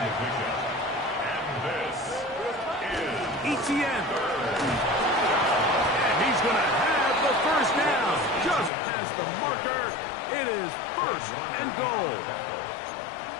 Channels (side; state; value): right; drops out; at 8.7 s